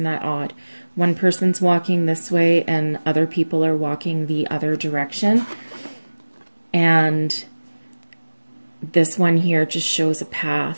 that odd? One person's walking this way and other people are walking the other direction. And this one here just shows a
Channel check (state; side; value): inverted; both; correlation -1.00